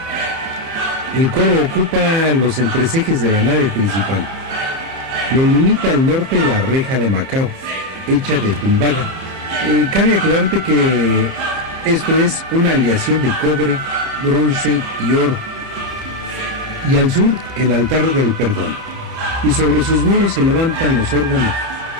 El coro ocupa los entrecejes de la nave principal. Lo limita al norte la reja de Macao, hecha de tumbaga. Cabe aclararte que esto es una aleación de cobre, bronce y oro. Y al sur, el altar del perdón. Y sobre sus muros se levantan los órganos,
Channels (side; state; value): left; late; 30 ms